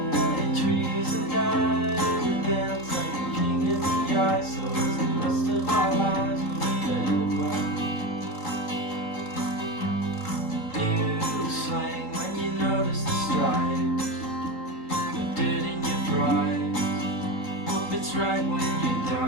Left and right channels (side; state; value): right; late; 3.8 ms